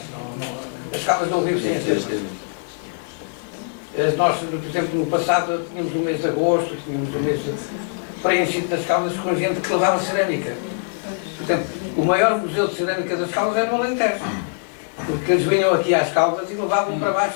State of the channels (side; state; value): right; silent; digital silence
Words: As Caldas não vivem sem as termas. Nós, por exemplo, no passado tínhamos o mês de agosto, tínhamos o mês preenchido das Caldas com gente que levava cerâmica. Por exemplo, o maior museu de cerâmica das Caldas era no Alentejo. Porque eles vinham aqui às Caldas e levavam para